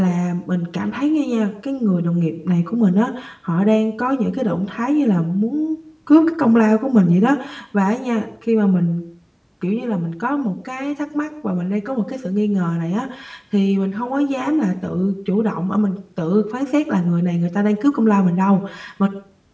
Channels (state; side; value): identical; both; correlation 1.00